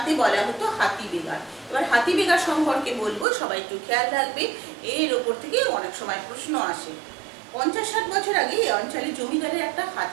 বলা হতো হাতি বেগার। এবার হাতি বেগার সম্পর্কে বলবো, সবাই একটু খেয়াল রাখবে, এর ওপর থেকে অনেক সময় প্রশ্ন আসে। 50-60 বছর আগে এই অঞ্চলে জমিদারের একটা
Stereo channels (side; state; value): left; drops out; at 3.2 s